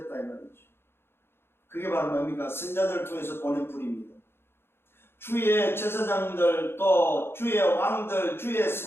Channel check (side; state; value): right; late; 0.11 ms